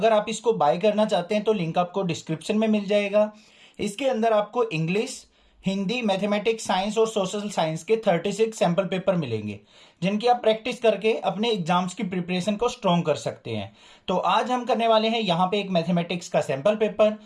आप इसको बाय करना चाहते हैं तो लिंक आपको डिस्क्रिप्शन में मिल जाएगा। इसके अंदर आपको इंग्लिश, हिंदी, मैथमेटिक्स, साइंस और सोशल साइंस के 36 सैम्पल पेपर मिलेंगे, जिनकी आप प्रैक्टिस करके अपने एग्जाम्स की प्रिपरेशन को स्ट्रॉन्ग कर सकते हैं। तो आज हम करने वाले हैं यहाँ पे एक मैथमेटिक्स का सैम्पल पेपर।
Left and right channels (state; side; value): identical; both; correlation 1.00